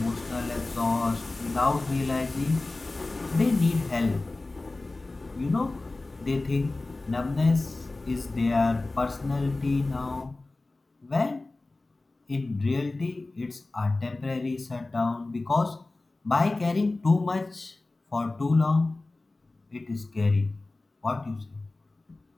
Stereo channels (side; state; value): right; quieter; 3.1 dB